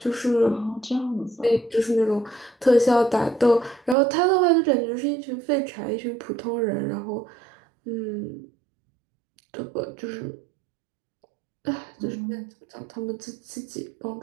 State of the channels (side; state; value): left; drops out; at 4.0 s